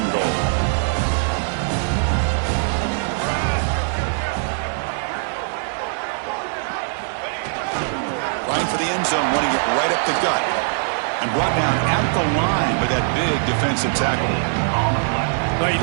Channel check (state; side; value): silent; left; 59 dB below the other